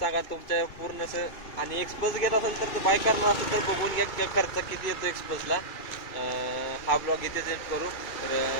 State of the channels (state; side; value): late; right; 2.5 ms